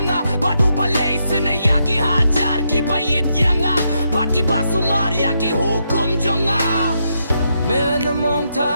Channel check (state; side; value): inverted; both; correlation -0.80